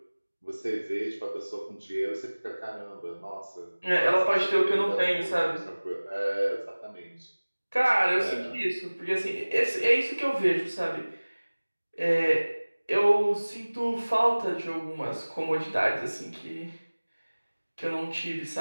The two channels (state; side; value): inverted; both; correlation -1.00